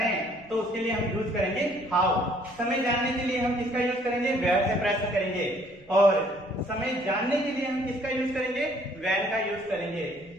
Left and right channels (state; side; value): noise; left; rumble, 26 dB below the sound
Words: हैं, तो उसके लिए हम यूज करेंगे हाउ। समय जानने के लिए हम किसका यूज करेंगे, वेयर से प्रश्न करेंगे। और समय जानने के लिए हम किसका यूज करेंगे, व्हेन का यूज करेंगे।